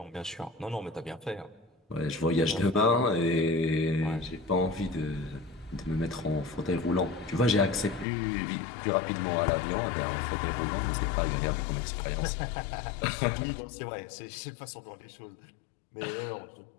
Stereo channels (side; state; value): right; drops out; at 8.1 s